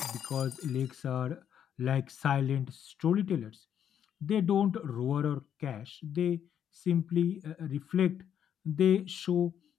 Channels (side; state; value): right; quieter; 9.2 dB